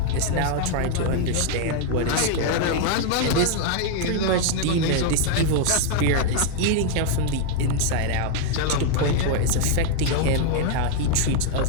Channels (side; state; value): both; different; correlation 0.00